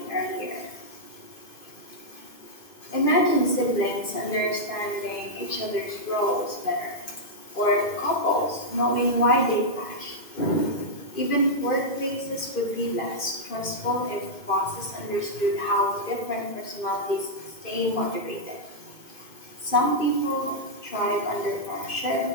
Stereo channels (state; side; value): late; right; 2.5 ms